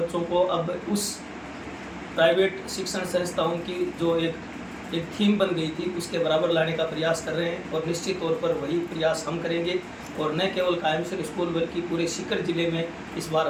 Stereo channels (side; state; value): both; identical; correlation 1.00